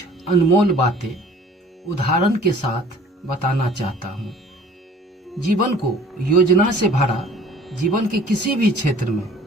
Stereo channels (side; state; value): both; normal; correlation 0.50